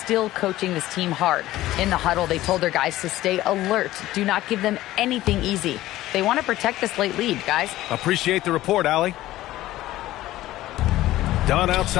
coaching this team hard. In the huddle, they told their guys to stay alert. Do not give them anything easy. They want to protect this late lead, guys. Appreciate the report, Allie. Dunn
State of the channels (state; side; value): quieter; right; 15.6 dB